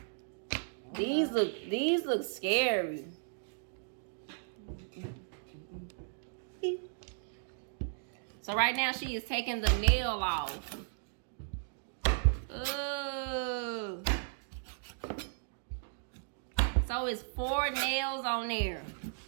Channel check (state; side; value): silent; left; digital silence